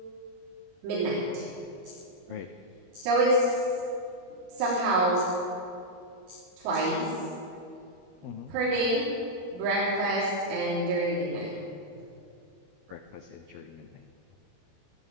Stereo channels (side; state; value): left; late; 21 ms